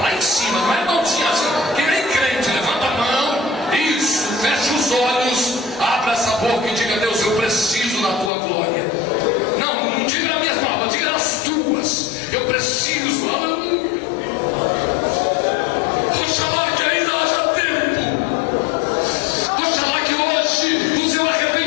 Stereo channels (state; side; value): drops out; right; at 8.3 s